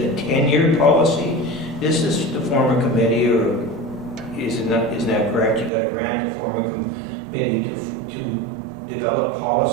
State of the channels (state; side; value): drops out; left; at 5.7 s